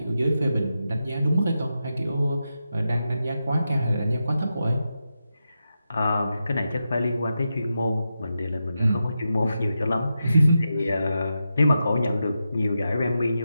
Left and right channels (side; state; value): both; inverted; correlation -0.88